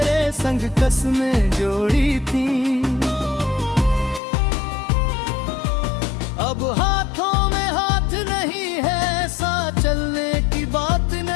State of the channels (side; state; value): right; drops out; at 4.2 s